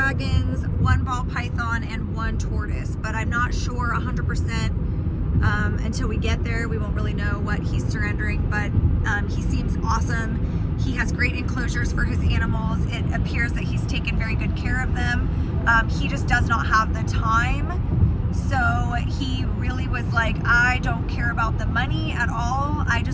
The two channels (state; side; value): identical; both; correlation 1.00